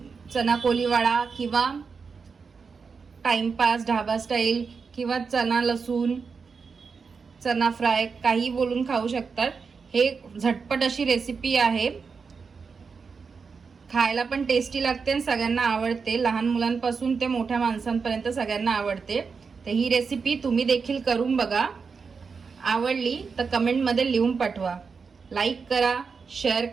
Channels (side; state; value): left; quieter; 5.3 dB